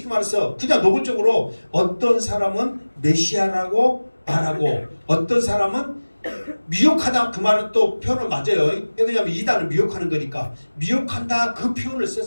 말해서 그냥 노골적으로 어떤 사람은 메시아라고 말하고 어떤 사람은 미혹하다 그 말은 또 표현은 맞아요. 왜냐하면 이단은 미혹하는 거니까 미혹한다 그 표현을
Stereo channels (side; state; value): both; inverted; correlation -1.00